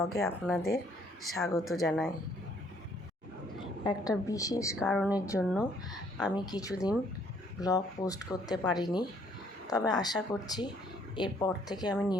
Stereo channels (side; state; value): both; normal; correlation 0.64